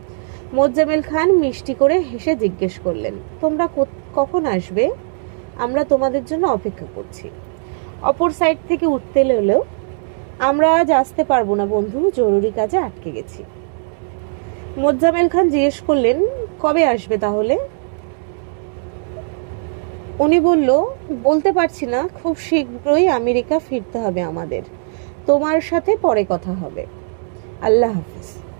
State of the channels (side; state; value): left; silent; digital silence